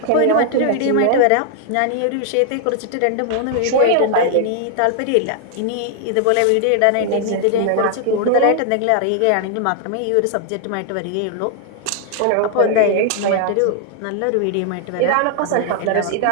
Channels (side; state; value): both; different; correlation 0.00